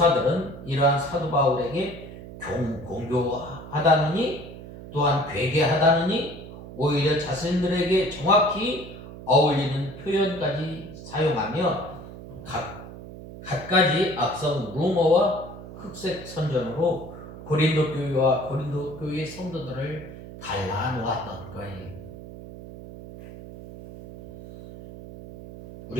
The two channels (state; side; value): noise; right; hum, 14 dB below the sound